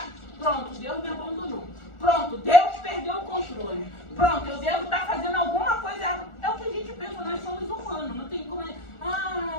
pronto, Deus me abandonou. Pronto, Deus perdeu o controle. Pronto, eu devo estar fazendo alguma coisa errada. É o que a gente pensa, nós somos humanos. Não tem como...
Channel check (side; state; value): right; late; 1.4 ms